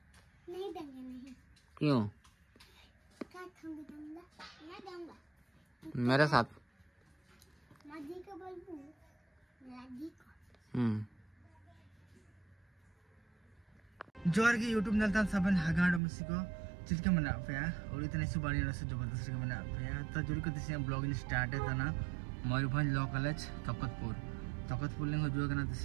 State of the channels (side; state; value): left; drops out; at 16.0 s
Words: नहीं देंगे। नहीं क्यों? मेरे साथ माजी को बोलूं लाजी को। जोर की यूट्यूब नलता सबन हगाड़ मुसिको चिलके मना पे और इतने सुबानी रस जबरदस्त के मना पे तो जुड़ी को तिसे ब्लॉगिंग स्टार्ट है तना मयूरभंज लॉ कॉलेज तकतपुर लिंग जो करना